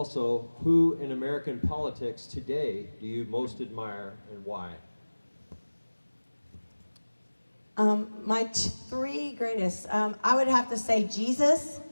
who in American politics today do you most admire and why? My three greatest, I would have to say Jesus,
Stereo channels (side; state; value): both; inverted; correlation -1.00